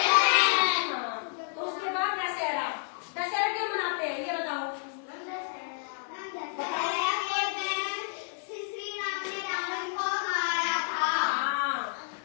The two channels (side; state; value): right; silent; 58 dB below the other